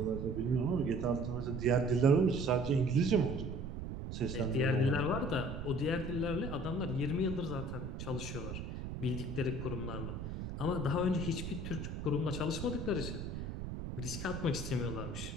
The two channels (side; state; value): right; noise; rumble, 6 dB below the sound